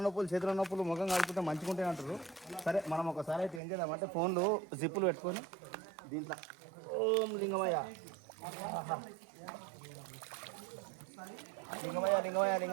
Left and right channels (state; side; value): drops out; left; at 3.6 s